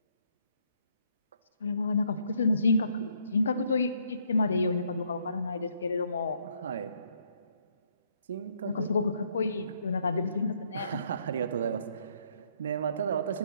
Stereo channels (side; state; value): both; inverted; correlation -0.69